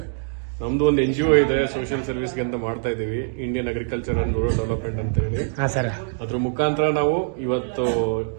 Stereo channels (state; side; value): silent; left; digital silence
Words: ನಮ್ದು ಒಂದು NGO ಇದೆ, ಸೋಷಿಯಲ್ ಸರ್ವಿಸ್ಗೆ ಅಂತ ಮಾಡ್ತಾ ಇದೀವಿ, Indian agriculture and rural development ಅಂತ ಹೇಳಿ. ಅದ್ರ ಮುಖಾಂತರ ನಾವು ಇವತ್ತು